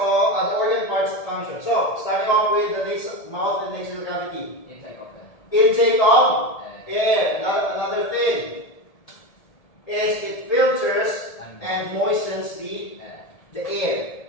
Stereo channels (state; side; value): late; right; 1.7 ms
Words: function. So starting off with the mouth and nasal cavity. Intake of Intake of air. Another thing is it filters and moistens the air.